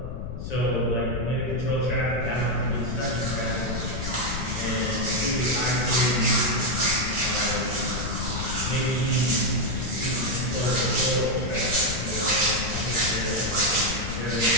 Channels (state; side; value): noise; left; rumble, 5 dB below the sound